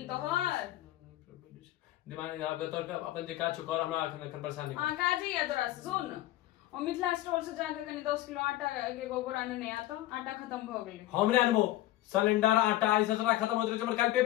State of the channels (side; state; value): right; quieter; 15.6 dB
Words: तो हर दिमाग आप तोर का अपन जे काज कर हमरा अखन परेशान नहीं हां काजी है तोरा सुन और मिथिला स्टोर से जाके कनी 10 किलो आटा के गोबर आने नहीं आता आटा खत्म भ गेलै हमरे अनबो सिलेंडर आटा ई सब खत्म होत रहे हमर काल